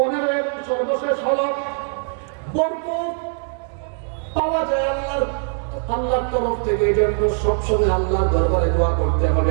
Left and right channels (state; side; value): silent; left; 65 dB below the other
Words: এবং সর্বশেষ হলো বরকত পাওয়া যায় আল্লাহর তরফ থেকে। এই জন্য সবসময় আল্লাহর দরবারে দোয়া করতে